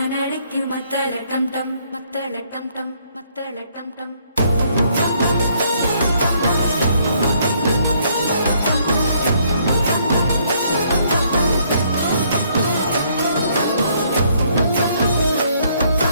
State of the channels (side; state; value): both; inverted; correlation -0.67